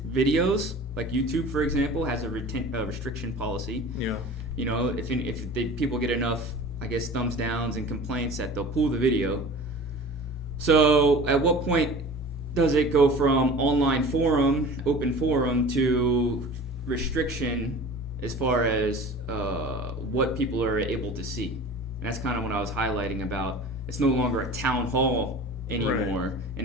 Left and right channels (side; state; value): both; normal; correlation 0.39